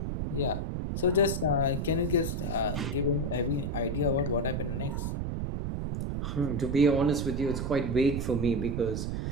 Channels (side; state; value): right; noise; rumble, 2 dB below the sound